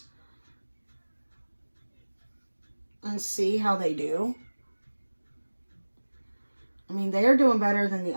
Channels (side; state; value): both; inverted; correlation -1.00